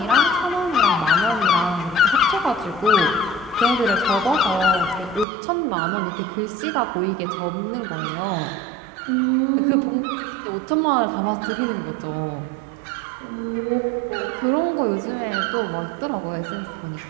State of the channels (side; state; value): left; drops out; at 5.2 s